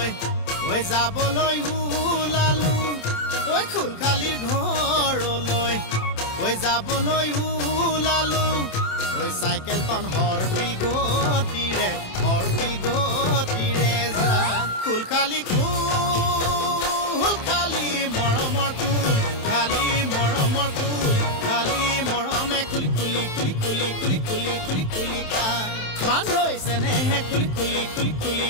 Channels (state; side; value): late; right; 27 ms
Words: ঐ যাবলৈ ওলালো ঐ খুলখালিৰ ঘৰলৈ ঐ যাবলৈ ওলালো ঐ চাইকেলখন হৰপিল গতিৰে যায় খুলখালি খুলখালি মৰমৰ কুল খালি মৰমৰ কুল খালি মৰমে খুলি খুলি খুলি খুলি খুলি খুলি খুলি খুলি খায় মান হৈছে নেহে খুলি খুলি খুলি খুলি